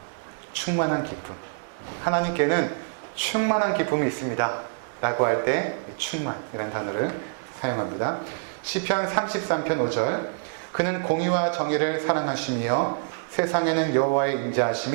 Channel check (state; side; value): silent; left; digital silence